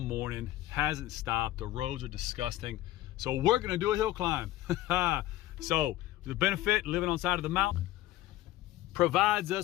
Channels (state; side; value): quieter; right; 15.3 dB